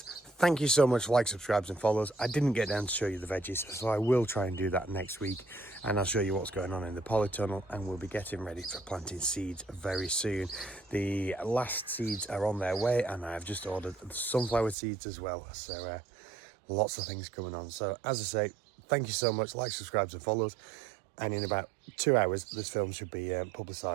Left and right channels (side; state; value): left; drops out; at 14.8 s